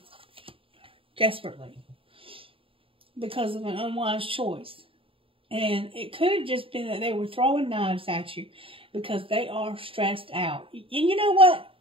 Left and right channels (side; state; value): left; late; 0.26 ms